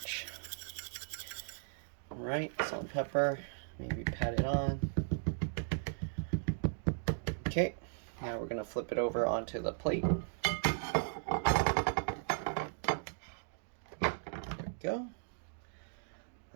Alright, salt and pepper, maybe pat it on. Okay, now we're going to flip it over onto the plate. There we go.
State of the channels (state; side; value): silent; left; digital silence